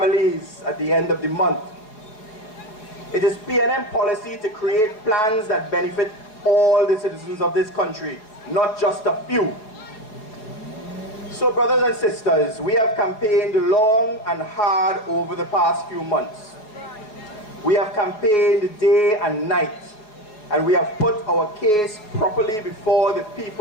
at the end of the month. It is PNM policy to create plans that benefit all the citizens of this country, not just a few. So brothers and sisters, we have campaigned long and hard over the past few months. We have campaigned day and night, and we have put our case properly before the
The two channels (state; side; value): late; right; 4.7 ms